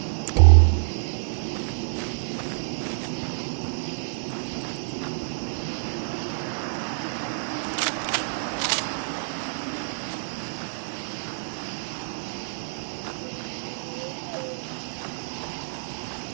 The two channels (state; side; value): silent; left; digital silence